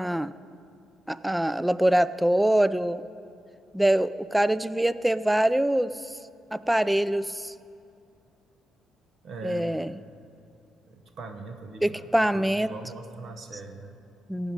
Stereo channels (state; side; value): normal; both; correlation 0.98